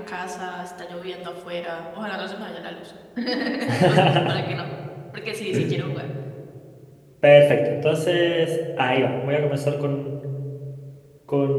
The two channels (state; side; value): identical; both; correlation 1.00